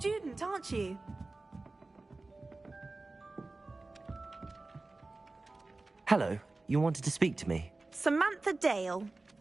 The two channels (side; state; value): left; quieter; 3.3 dB